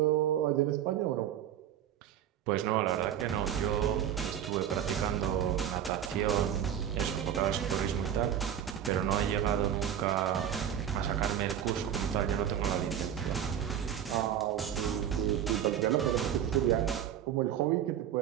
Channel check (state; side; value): quieter; left; 9.9 dB